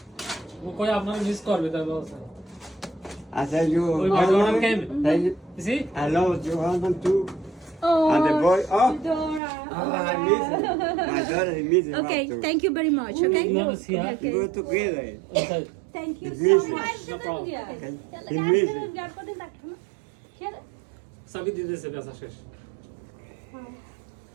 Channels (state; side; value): drops out; left; at 9.4 s